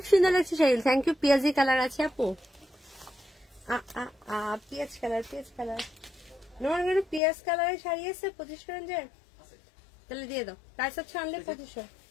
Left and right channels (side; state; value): right; drops out; at 7.2 s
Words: সুন্দর লাগছে শাড়ি। Thank you. পেঁয়াজি কালার আছে আপু, পেঁয়াজ কালার, পেঁয়াজ কালার, পেঁয়াজ কালারের শাড়ি আছে 2500 রেঞ্জের, তাহলে দিয়ে দাও। প্রাইস হচ্ছে অনলি 2500,